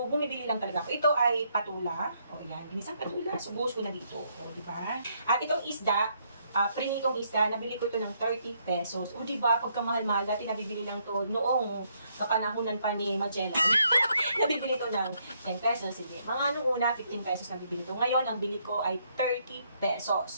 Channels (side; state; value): both; inverted; correlation -0.73